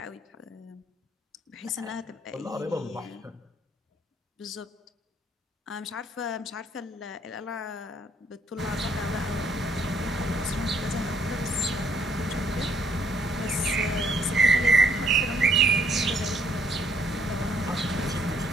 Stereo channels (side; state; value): both; normal; correlation 0.67